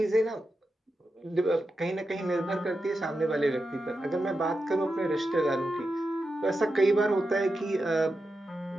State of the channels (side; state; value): both; normal; correlation 0.89